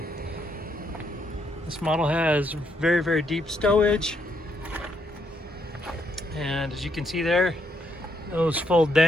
This model has very, very deep stowage. And as you can see there, those fold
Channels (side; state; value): both; normal; correlation 0.75